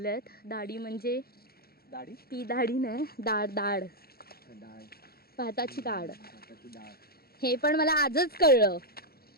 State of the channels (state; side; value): late; right; 0.44 ms